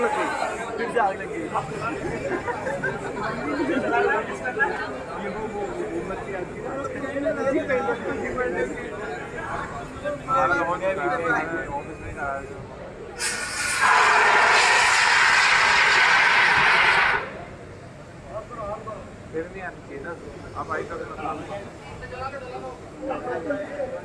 लगी, फिर से आग लगी। फिर नहीं आनी चाहिए ना, आप आई तो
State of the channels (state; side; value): identical; both; correlation 1.00